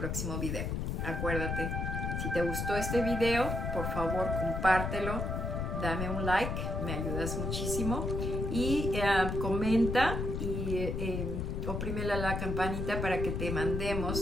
video. Acuérdate, si te gustó este video, por favor compártelo, dame un like, me ayudas muchísimo, y comenta y oprime la campanita para que te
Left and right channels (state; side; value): noise; left; rumble, 2 dB below the sound